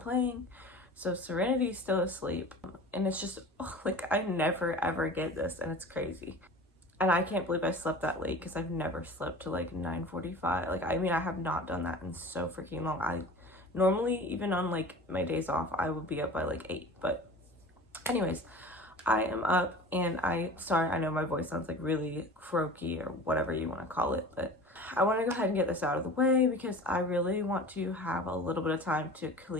playing. So Serenity's still asleep, and it's just like I never ever get this, and it's crazy. And I can't believe I slept that late because I've never slept to like 9:45. Like, I mean, I have not done that in so freaking long. I normally, even on like my days off, I would be up by like 8. But anyways, I am up, and sorry, I know my voice sounds like really croaky or whatever you want to call it, but I want to go ahead and get this out of the way because I really want to have a little bit of time to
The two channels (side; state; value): both; normal; correlation 0.39